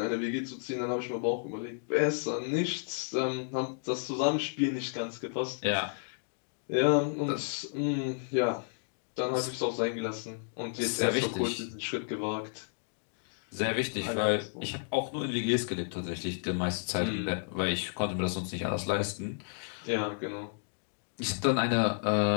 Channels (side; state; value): right; silent; digital silence